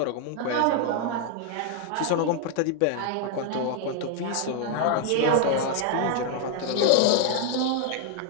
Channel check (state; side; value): different; both; correlation 0.00